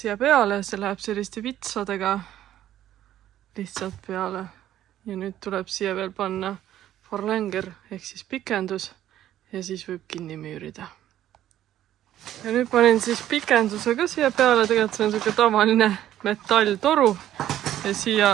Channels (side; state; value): left; quieter; 12.3 dB